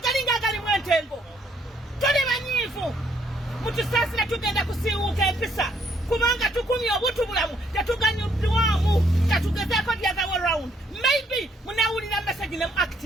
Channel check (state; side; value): normal; both; correlation 0.69